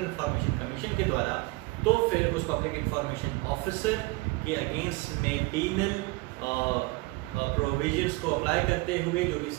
इंफॉर्मेशन कमीशन के द्वारा, तो फिर उस पब्लिक इंफॉर्मेशन ऑफिसर के अगेंस्ट में पीनल प्रोविजंस को अप्लाई करते हुए जो भी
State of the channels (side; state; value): left; quieter; 23.8 dB